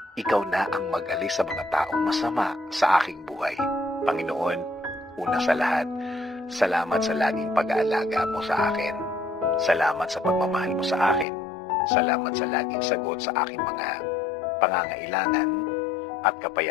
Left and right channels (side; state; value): right; drops out; at 11.2 s